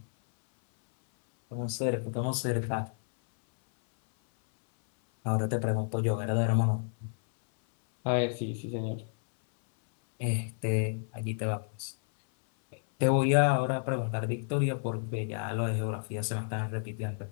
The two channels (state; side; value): silent; right; 58 dB below the other